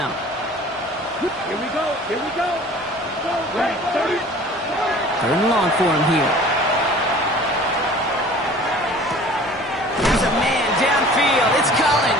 Here we go. Here we go. Right, 30. 3rd and long for him here. There's a man downfield. It's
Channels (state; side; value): normal; both; correlation 0.46